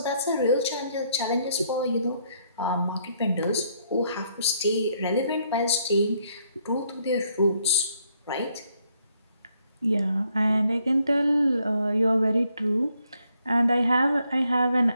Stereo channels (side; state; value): both; inverted; correlation -0.72